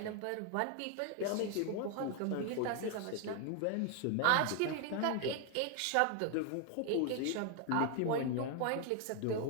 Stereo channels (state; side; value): different; both; correlation 0.00